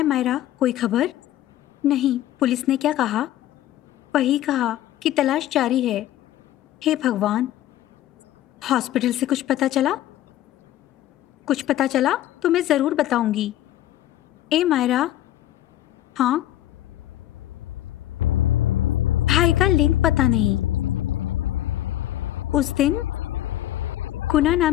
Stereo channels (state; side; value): quieter; right; 13.3 dB